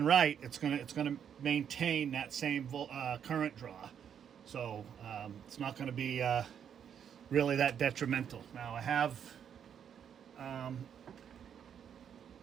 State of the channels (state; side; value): quieter; left; 8.4 dB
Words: right, it's gonna maintain that same current draw. So it's not going to be really that detrimental. Now I have